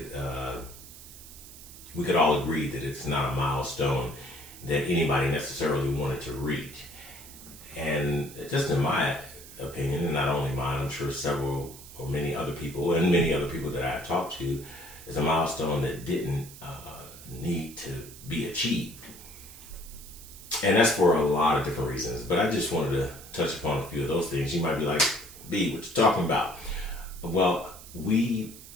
we could all agree that it's not a milestone that anybody necessarily wanted to reach. And just in my opinion, and not only mine, I'm sure several or many other people, and many other people that I've talked to, is a milestone that didn't need to be achieved. And that's for a lot of different reasons. But I just wanted to touch upon a few of those things. You might be like, B, what you talking about? Well, we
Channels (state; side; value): noise; right; hiss, 17 dB below the sound